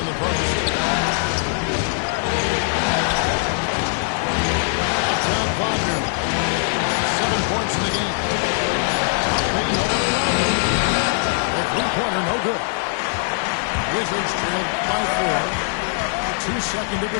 the post. Uptown Wagner. 7 points in the game. The three-pointer, no good. Wizards trailed by 4. 2-second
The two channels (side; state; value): right; silent; 61 dB below the other